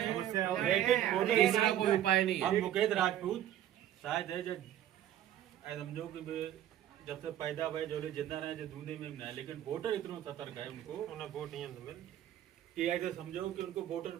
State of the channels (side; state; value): left; quieter; 11.8 dB